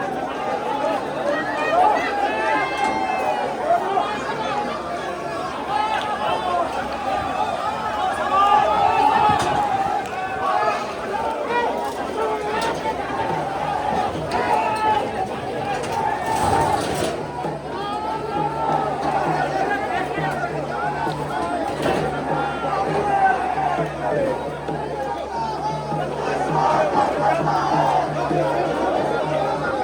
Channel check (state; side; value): identical; both; correlation 1.00